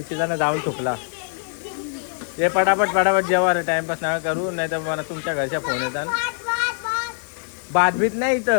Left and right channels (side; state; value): right; silent; 64 dB below the other